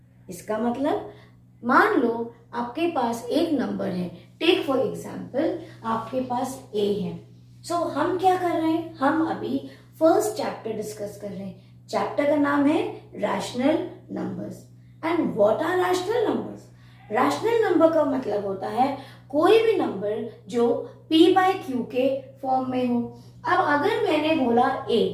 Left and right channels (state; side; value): identical; both; correlation 1.00